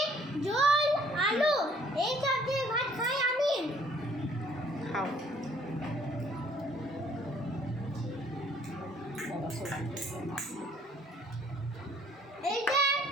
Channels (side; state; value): both; normal; correlation 0.61